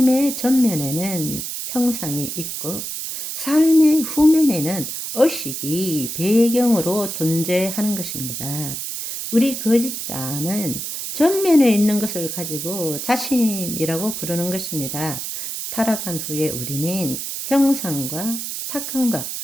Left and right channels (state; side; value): noise; right; hiss, 5 dB below the sound